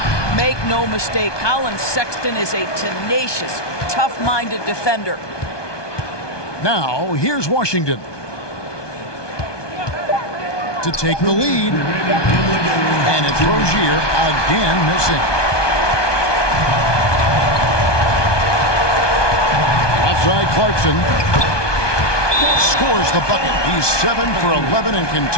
Make no mistake, Colin Sexton is a tenacious, tough-minded defender. Now, here's Washington to take the lead. And it's Rozier again missing. Outside Clarkson scores the bucket. He's 7 for 11 and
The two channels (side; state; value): right; late; 1.2 ms